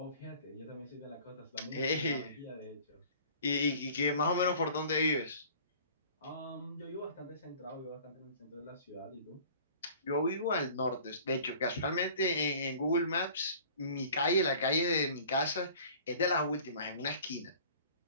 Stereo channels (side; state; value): both; inverted; correlation -0.47